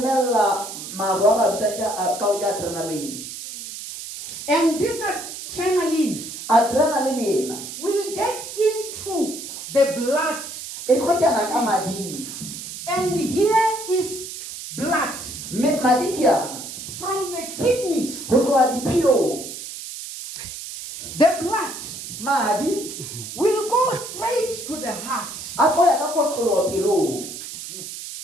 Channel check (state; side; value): noise; right; hiss, 10 dB below the sound